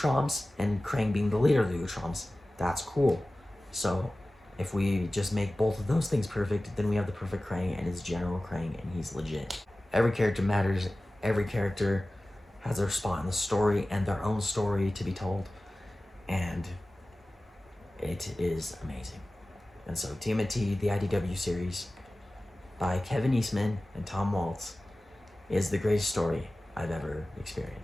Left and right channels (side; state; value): both; normal; correlation 0.96